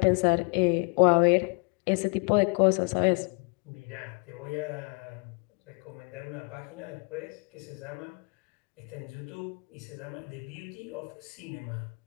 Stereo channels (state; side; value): quieter; right; 36.1 dB